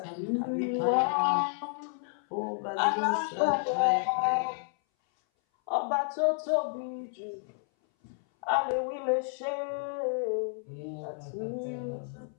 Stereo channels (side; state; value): right; silent; 57 dB below the other